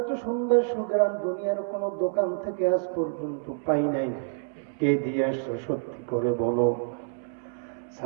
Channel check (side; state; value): left; silent; 60 dB below the other